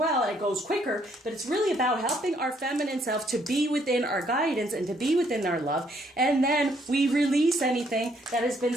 It goes quicker, but it's really about helping our feminine self to be within our guidance and to be within our love. And then we release anything that has been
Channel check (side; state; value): both; normal; correlation 0.68